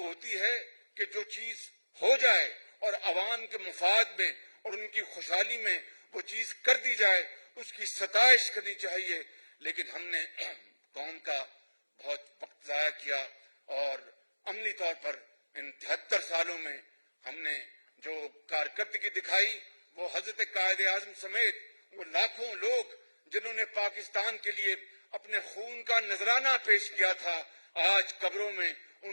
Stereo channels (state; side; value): inverted; both; correlation -1.00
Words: ہوتی ہے کہ جو چیز ہو جائے اور عوام کے مفاد میں اور ان کی خوشحالی میں وہ چیز کر دی جائے، اس کی ستائش کرنی چاہیے. لیکن ہم نے قوم کا بہت وقت ضائع کیا اور عملی طور پر ان 73 سالوں میں ہم نے جو کارکردگی دکھائی وہ حضرت قائد اعظم سمیت وہ لاکھوں لوگ جنہوں نے پاکستان کے لیے اپنے خون کا نذرانہ پیش کیا تھا، آج قبروں میں